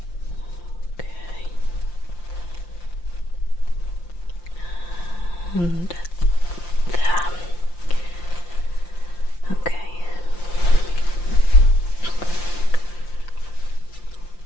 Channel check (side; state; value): right; late; 5.8 ms